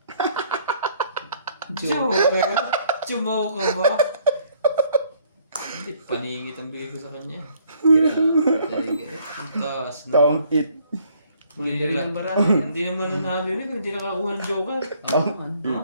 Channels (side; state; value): both; inverted; correlation -0.63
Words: Joker. Chumaw ka ba? Hindi, paningit ang bigay ko sa kanya. Ang taas na. Taong it. Hindi rin ang barang. Hindi naman nanalilig. Hindi nakakuha ng Joker.